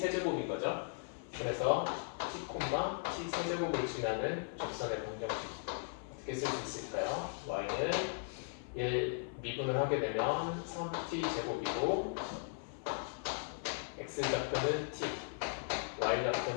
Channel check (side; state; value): right; silent; 53 dB below the other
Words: 거죠. 그래서 t, t 세제곱을 지나는 접선의 방정식 어떻게 쓸 수 있을까요? y는 얘 미분을 하게 되면 3t 제곱이고 x 좌표는 t, y